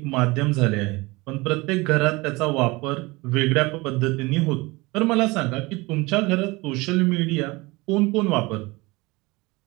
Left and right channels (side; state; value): left; quieter; 23.2 dB